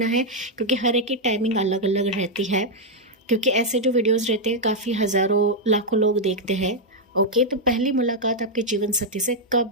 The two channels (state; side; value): normal; both; correlation -0.02